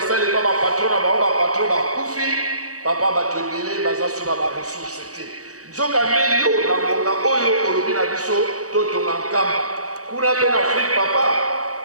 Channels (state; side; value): late; left; 0.66 ms